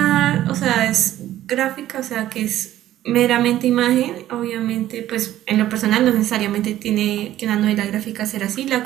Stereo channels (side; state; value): left; quieter; 13.3 dB